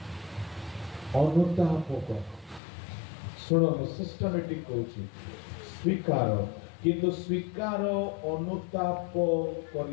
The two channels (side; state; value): right; drops out; at 2.6 s